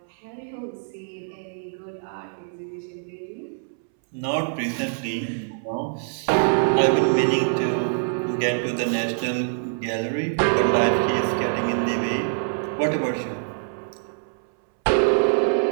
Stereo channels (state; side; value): silent; left; 62 dB below the other